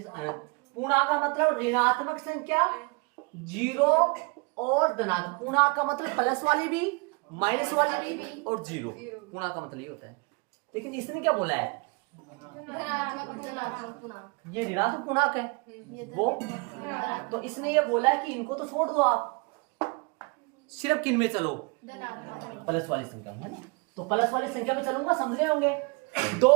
अनंत। पूर्णांक का मतलब ऋणात्मक संख्या, जीरो और धनात्मक। पूर्णांक का मतलब प्लस वाली भी, माइनस वाली भी और जीरो। पूर्णांक का मतलब ये होता है। लेकिन इसने क्या बोला है, ये ऋणात्मक पूर्णांक है वो, तो इसने ये बोला है कि इनको तो छोड़ दो आप, सिर्फ किन में चलो, प्लस वाली संख्या में, है ना। तो प्लस वाली संख्या में चलूंगा, समझ गए होंगे।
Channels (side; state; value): left; quieter; 30.9 dB